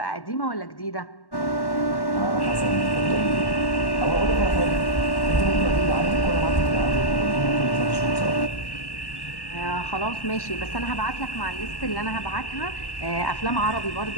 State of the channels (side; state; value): right; late; 1.1 ms